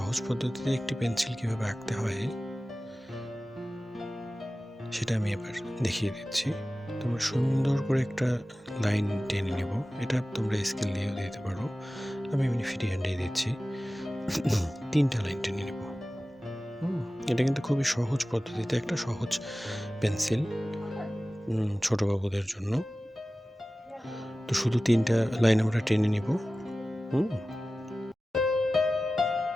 পদ্ধতিতে একটি পেন্সিল কিভাবে আঁকতে হয় সেটা আমি এবার দেখিয়ে দিচ্ছি। তোমরা সুন্দর করে একটা লাইন টেনে নেব। এটা তোমরা স্কেল দিয়েও দিতে পারো, আমি এমনি ফ্রি হ্যান্ডেই দিচ্ছি। 3টা লাইন টেনে নেব। এটা কিন্তু খুবই সহজ পদ্ধতিতে একটা সহজ পেন্সিল ছোট বাবুদের জন্য। তো শুধু 3টা লাইন আমরা টেনে নিব।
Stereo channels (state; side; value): normal; both; correlation 0.96